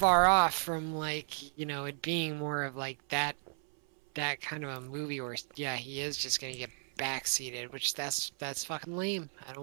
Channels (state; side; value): silent; left; 55 dB below the other